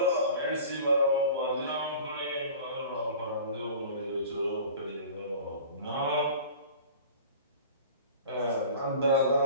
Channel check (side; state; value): both; inverted; correlation -0.41